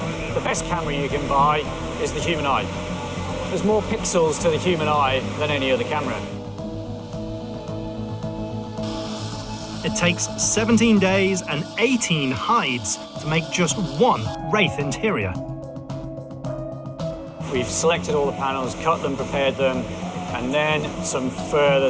the best camera you can buy is the human eye. There's more pixels to the human eye than any other camera. It takes 17 days and 18 hides to make just one Wraith interior. We've selected all the panels, cut them, prepared them, and then some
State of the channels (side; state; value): both; identical; correlation 1.00